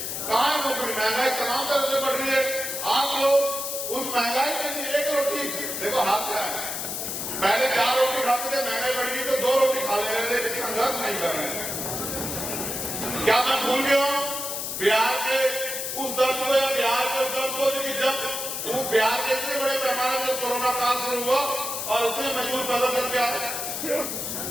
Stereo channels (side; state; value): left; noise; hiss, 4 dB below the sound